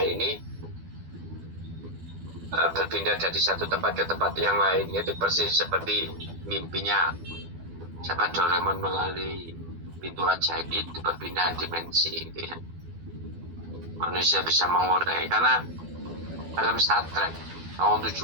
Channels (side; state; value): left; late; 12 ms